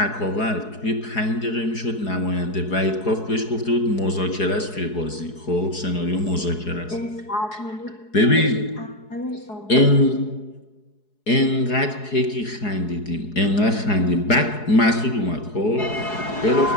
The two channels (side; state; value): right; late; 4.7 ms